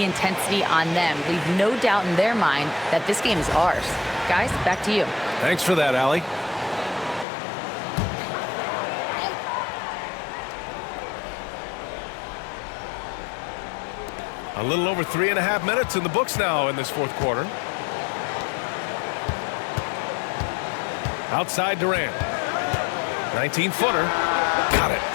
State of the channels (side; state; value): right; drops out; at 7.2 s